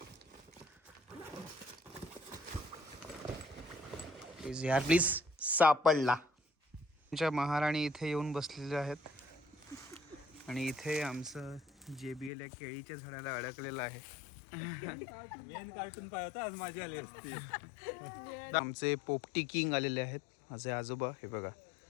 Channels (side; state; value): right; drops out; at 12.3 s